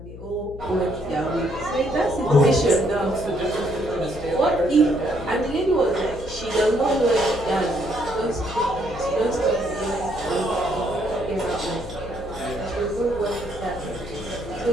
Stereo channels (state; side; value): noise; left; hum, 14 dB below the sound